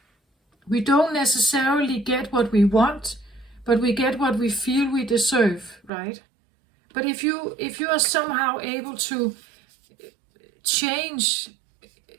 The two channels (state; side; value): drops out; left; at 5.9 s